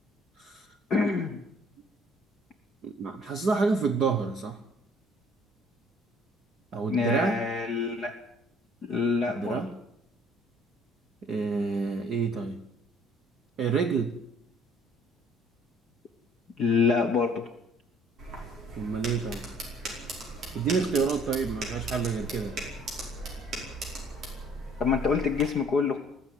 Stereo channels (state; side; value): normal; both; correlation 0.58